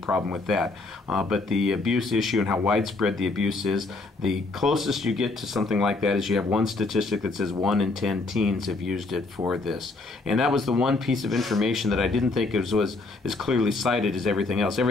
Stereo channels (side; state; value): right; quieter; 3.4 dB